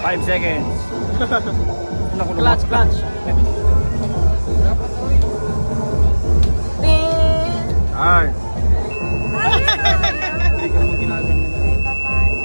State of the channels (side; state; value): both; inverted; correlation -1.00